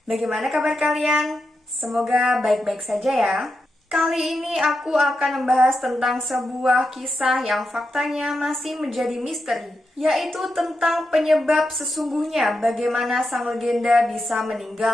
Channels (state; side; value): normal; both; correlation 0.87